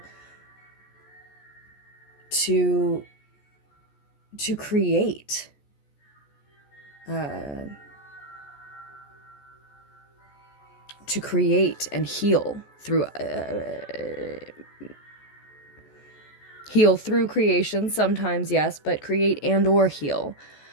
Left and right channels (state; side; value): late; right; 14 ms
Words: to create and heal through creation sometimes, yes, but create and or heal